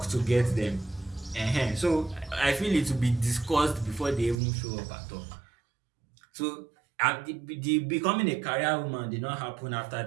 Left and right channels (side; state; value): left; drops out; at 4.4 s